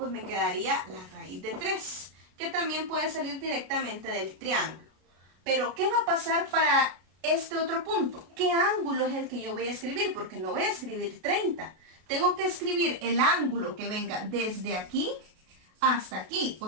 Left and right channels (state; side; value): late; left; 32 ms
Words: me quedaría la raíz de 3, que también puede salir directamente del triángulo. Pero ¿qué va a pasar para este otro punto? ¿Qué ángulo es el que yo voy a escribir? Porque no voy a escribir 30. Tengo que escribir el ángulo que venga desde aquí hasta aquí. O